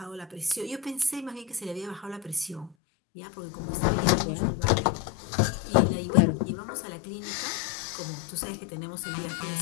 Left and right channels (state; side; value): drops out; right; at 2.8 s